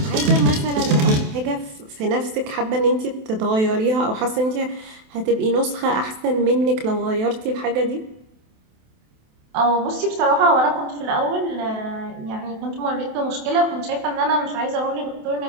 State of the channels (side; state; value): left; late; 28 ms